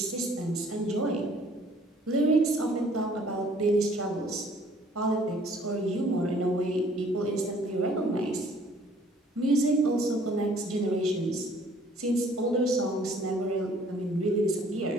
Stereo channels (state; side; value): normal; both; correlation 0.58